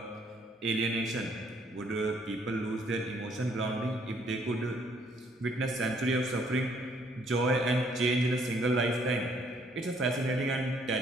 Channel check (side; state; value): both; normal; correlation 0.65